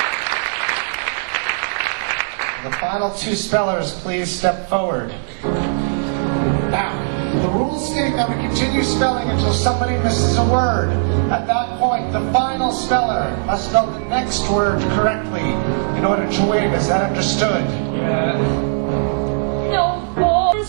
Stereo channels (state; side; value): silent; left; digital silence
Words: The final two spellers, please step forward. Now, the rules state that we continue spelling until somebody misses a word. At that point, the final speller must spell the next word correctly in order to win. Is that understood? No